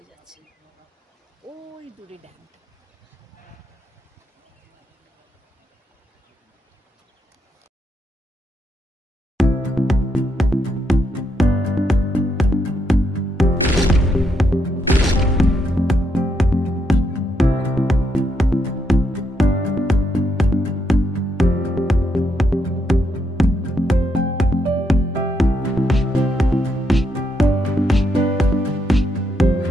যাচ্ছে, ওই দূরে ড্যামটা।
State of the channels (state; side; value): normal; both; correlation 0.78